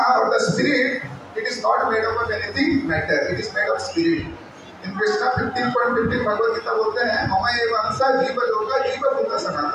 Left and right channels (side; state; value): both; identical; correlation 1.00